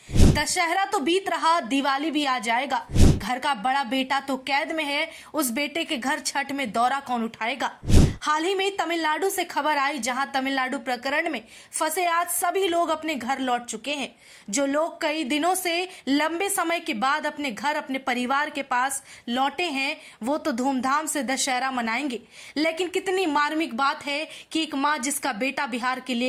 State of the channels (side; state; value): both; identical; correlation 1.00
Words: दशहरा तो बीत रहा, दिवाली भी आ जाएगा। घर का बड़ा बेटा तो कैद में है, उस बेटे के घर छठ में दौरा कौन उठाएगा। हाल ही में तमिलनाडु से खबर आई, जहां तमिलनाडु प्रकरण में फंसे आज सभी लोग अपने घर लौट चुके हैं। जो लोग कई दिनों से लंबे समय के बाद अपने घर, अपने परिवार के पास लौटे हैं, वो तो धूमधाम से दशहरा मनाएंगे। लेकिन कितनी मार्मिक बात है कि एक माँ जिसका बेटा बिहार के